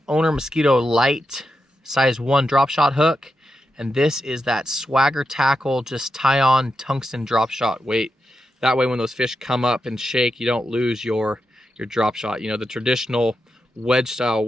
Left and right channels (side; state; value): both; normal; correlation 0.87